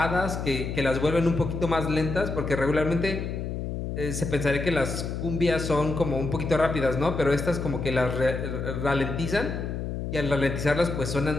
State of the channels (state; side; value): noise; left; hum, 4 dB below the sound